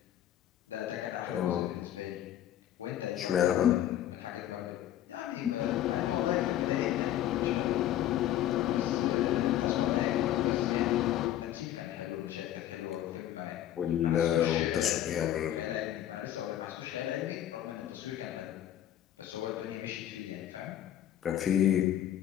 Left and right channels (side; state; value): right; quieter; 11.9 dB